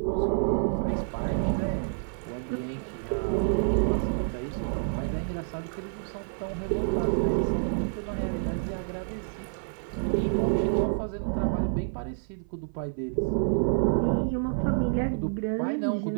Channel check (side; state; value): left; silent; 56 dB below the other